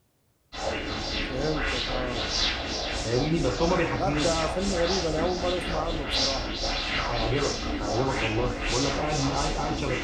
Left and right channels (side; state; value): both; identical; correlation 1.00